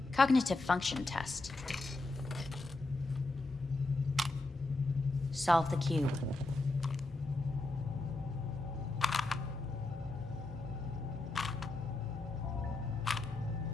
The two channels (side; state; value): right; quieter; 3.0 dB